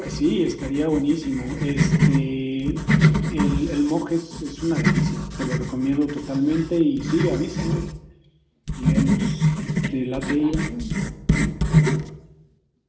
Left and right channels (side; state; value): both; identical; correlation 1.00